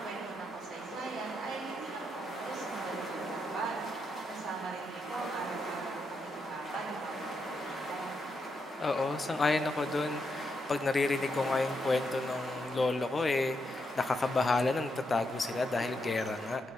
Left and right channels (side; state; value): both; normal; correlation 0.81